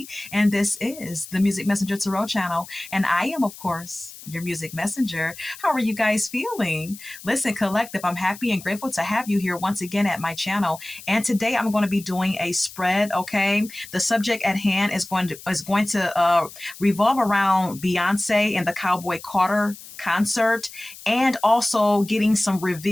and this is the Music Messenger Tarot channel. And I am, of course, your music messenger. How are you guys feeling? Listen, Collective, I'm happy and grateful to have you here once again at my channel. And today I'm going to be doing a spread, okay? The subject at hand is going to revolve around Beyonce and the Cowboy Carter concert, and also getting some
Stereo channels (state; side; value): noise; left; hiss, 16 dB below the sound